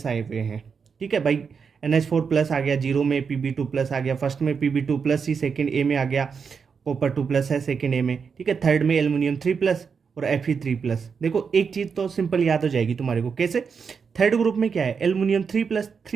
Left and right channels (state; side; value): quieter; left; 5.9 dB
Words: आए हुए हैं। ठीक है भाई, NH4+ आ गया, 0 में Pb2+ आ गया, फर्स्ट में Pb2+ ही सेकेंड ए में आ गया, कॉपर 2+ है सेकेंड ए में। ठीक है, थर्ड में एल्युमिनियम 3+ और Fe3+। देखो एक चीज़ तो सिंपल याद हो जाएगी तुम्हारे को, कैसे, थर्ड ग्रुप में क्या है, एल्युमिनियम